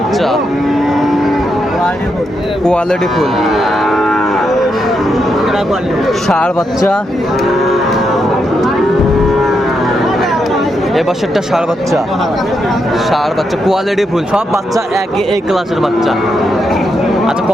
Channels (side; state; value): both; normal; correlation 0.82